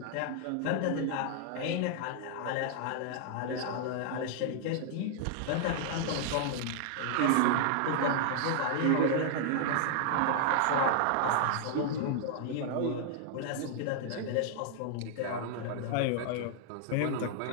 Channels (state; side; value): different; both; correlation 0.00